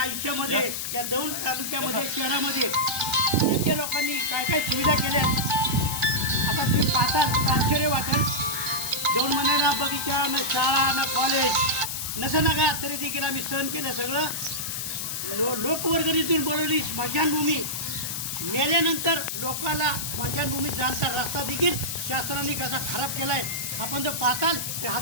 या दौंड तालुक्यामध्ये शहरामध्ये नेते लोकांनी काय काय सुविधा केल्या। आता तुम्ही पाहता आश्चर्य वाटेल, 2 महिन्याला बगीचा ना शाळा ना कॉलेज नसं नका तरी देखील आम्ही सहन केलं सगळं। लोकवर्गणीतून बोलवली स्मशानभूमी, मेल्यानंतर लोकांना स्मशानभूमीत जाण्याचा रस्ता देखील शासनाने कसा खराब केला आहे। आपण जर पाहताल ते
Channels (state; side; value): noise; left; hiss, 4 dB below the sound